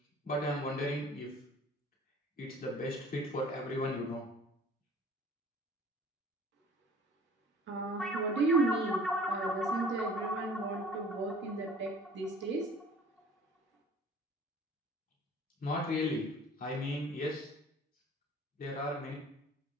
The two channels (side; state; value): both; normal; correlation 0.49